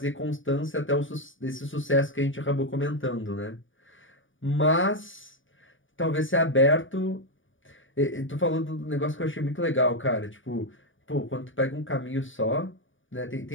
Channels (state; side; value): late; right; 0.57 ms